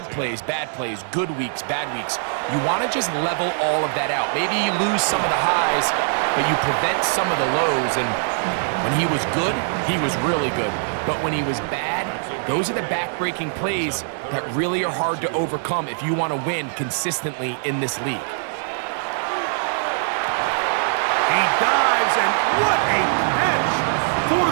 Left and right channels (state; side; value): silent; left; 64 dB below the other